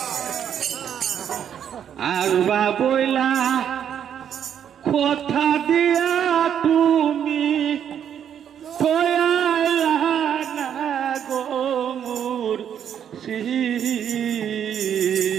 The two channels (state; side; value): quieter; left; 9.0 dB